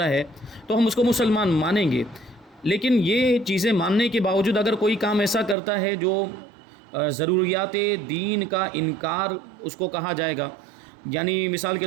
ہے، تو ہم اس کو مسلمان مانیں گے۔ لیکن یہ چیزیں ماننے کے باوجود اگر کوئی کام ایسا کرتا ہے جو ضروریات دین کا انکار اس کو کہا جائے گا، یعنی مثال کے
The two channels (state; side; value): drops out; left; at 5.6 s